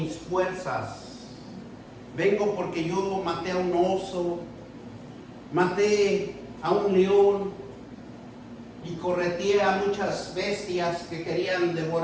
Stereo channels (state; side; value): identical; both; correlation 1.00